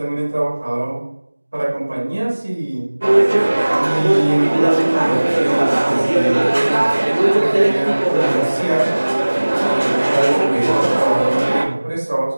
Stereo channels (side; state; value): both; inverted; correlation -1.00